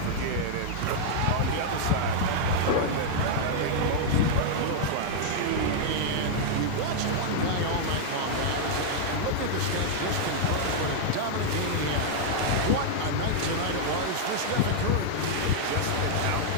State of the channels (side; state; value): both; different; correlation -0.01